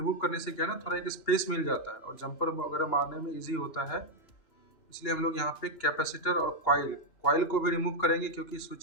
करने से क्या है ना, थोड़ा एक स्पेस मिल जाता है और जंपर वगैरह मारने में इजी होता है। इसलिए हम लोग यहाँ पे कैपेसिटर और कॉइल को भी रिमूव करेंगे, क्योंकि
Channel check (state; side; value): late; right; 2.9 ms